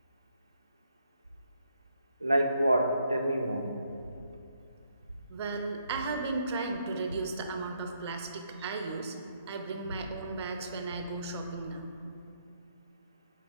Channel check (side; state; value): both; inverted; correlation -0.74